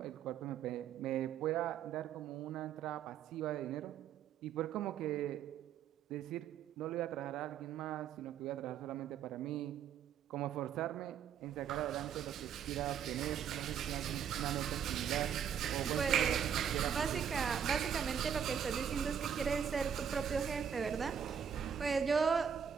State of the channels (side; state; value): left; quieter; 8.1 dB